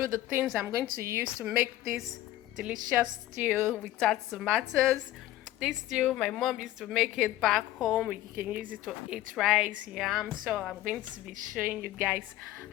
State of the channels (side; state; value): right; quieter; 14.8 dB